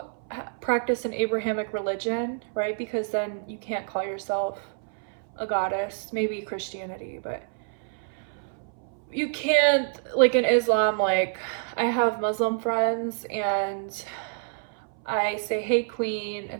practice an Abrahamic religion, right? Because then you can't call yourself a goddess. Maybe Christianity, but you can't, like in Islam, like I have Muslim friends and I say hey queen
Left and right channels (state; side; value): silent; left; 60 dB below the other